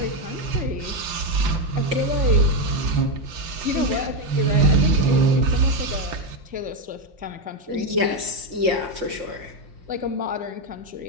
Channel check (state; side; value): late; left; 5.7 ms